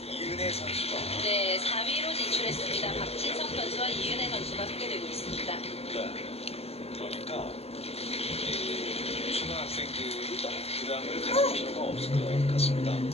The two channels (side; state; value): right; late; 0.29 ms